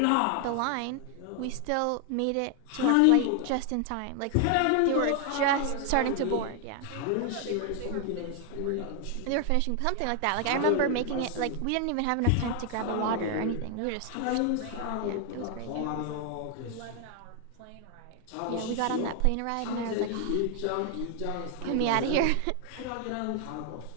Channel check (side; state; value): both; different; correlation 0.00